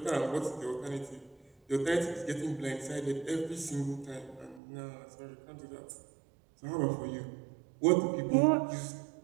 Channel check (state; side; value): drops out; left; at 4.6 s